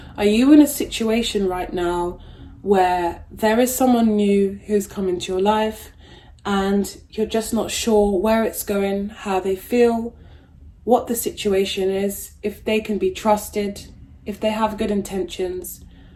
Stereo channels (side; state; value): both; identical; correlation 1.00